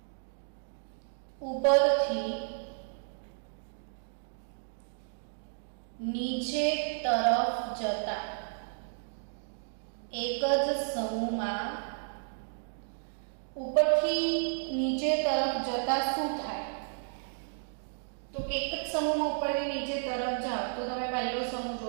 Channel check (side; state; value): left; silent; digital silence